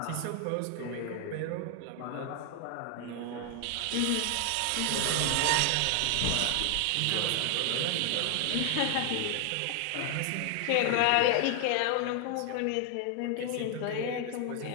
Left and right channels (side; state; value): both; different; correlation 0.00